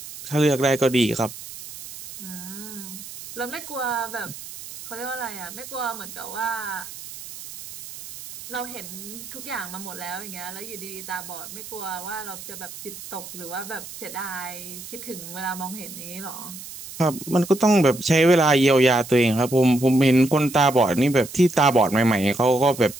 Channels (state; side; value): noise; right; hiss, 13 dB below the sound